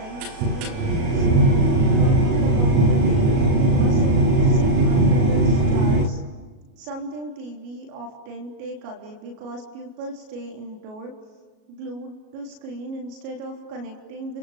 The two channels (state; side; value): late; left; 37 ms